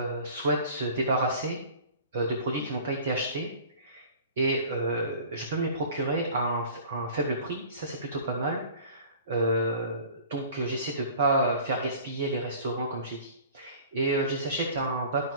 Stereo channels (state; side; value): inverted; both; correlation -0.45